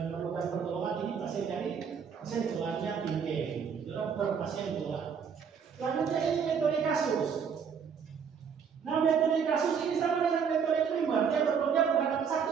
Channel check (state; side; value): quieter; left; 6.8 dB